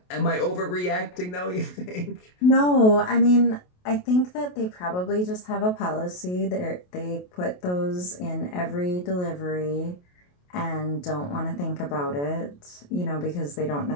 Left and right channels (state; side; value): late; right; 28 ms